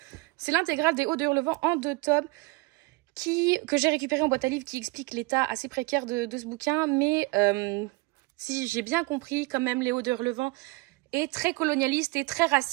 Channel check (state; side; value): quieter; left; 25.4 dB